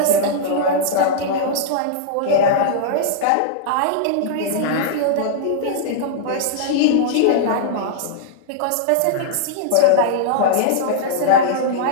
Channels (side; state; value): both; different; correlation -0.02